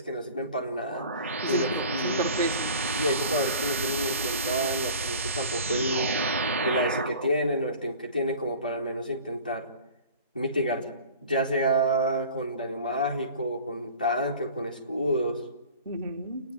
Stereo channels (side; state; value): both; inverted; correlation -0.43